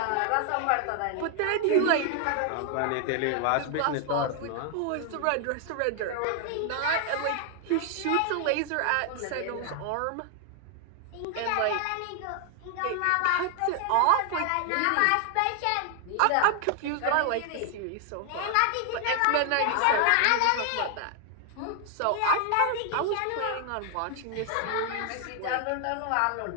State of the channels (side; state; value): both; different; correlation 0.00